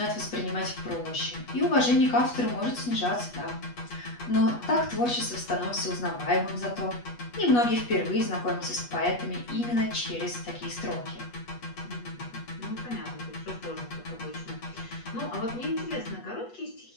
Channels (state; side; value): late; right; 8.3 ms